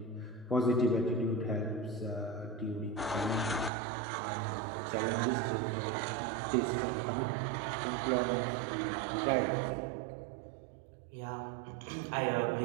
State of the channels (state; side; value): drops out; left; at 3.7 s